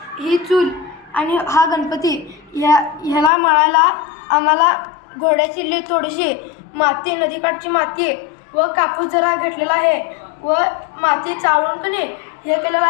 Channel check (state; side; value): drops out; right; at 3.3 s